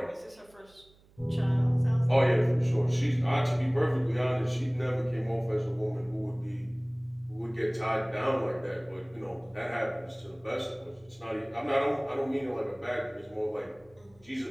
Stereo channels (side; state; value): right; noise; hum, 29 dB below the sound